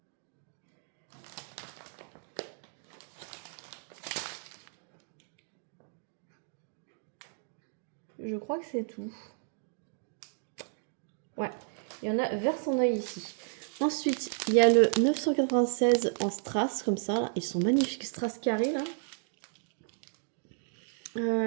Je crois que c'est tout. Ouais, il y en a vers son œil ici. Ensuite, il y a le 996 en strass, comme ça. Là. Ils sont magnifiques, strass carré, là.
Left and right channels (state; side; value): silent; left; digital silence